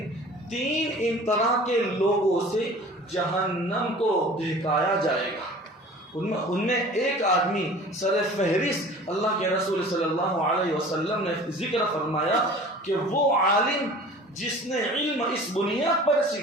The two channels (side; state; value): both; normal; correlation 0.43